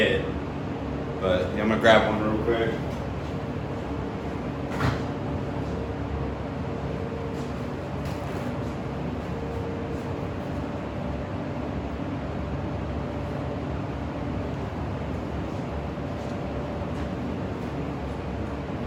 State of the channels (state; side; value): identical; both; correlation 1.00